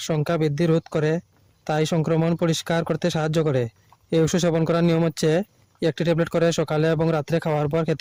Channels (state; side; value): identical; both; correlation 1.00